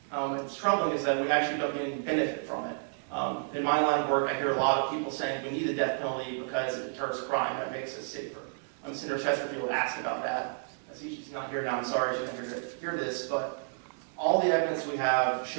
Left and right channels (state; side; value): silent; left; digital silence